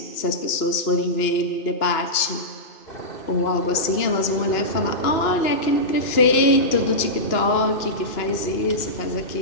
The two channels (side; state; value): right; late; 2.9 ms